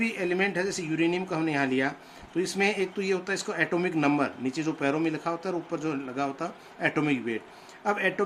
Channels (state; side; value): identical; both; correlation 1.00